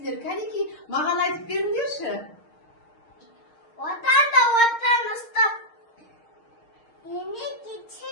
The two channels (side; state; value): right; late; 6.5 ms